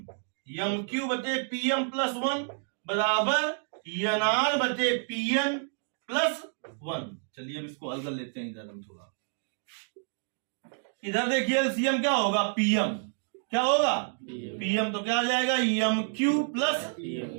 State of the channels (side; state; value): left; silent; 58 dB below the other